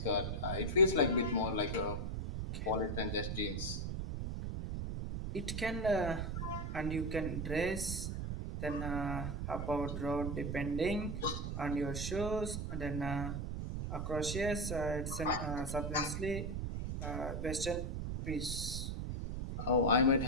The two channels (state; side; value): noise; right; rumble, 3 dB below the sound